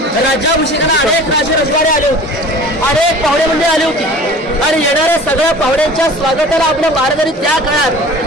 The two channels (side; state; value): both; normal; correlation 0.42